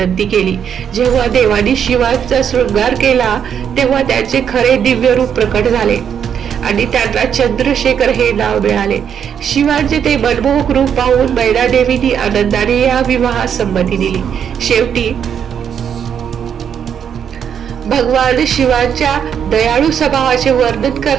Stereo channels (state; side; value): quieter; left; 8.2 dB